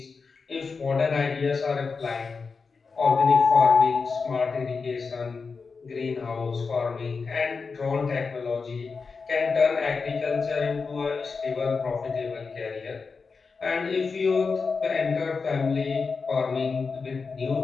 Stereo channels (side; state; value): right; quieter; 4.8 dB